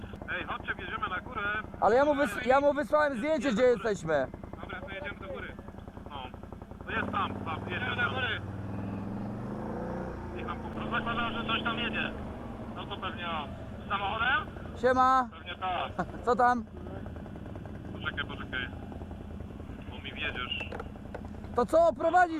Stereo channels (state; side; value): identical; both; correlation 1.00